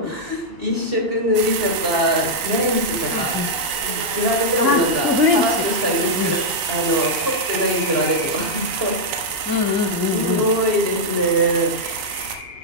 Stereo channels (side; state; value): left; late; 3.2 ms